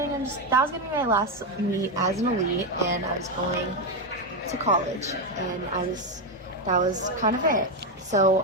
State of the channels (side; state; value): both; normal; correlation 0.07